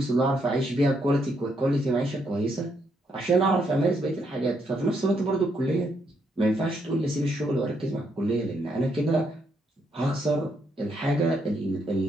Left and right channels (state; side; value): normal; both; correlation 0.76